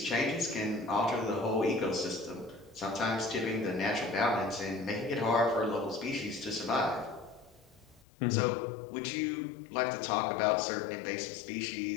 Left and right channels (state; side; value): drops out; right; at 8.1 s